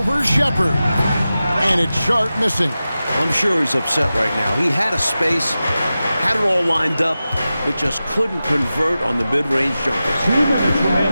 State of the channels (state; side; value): inverted; both; correlation -0.94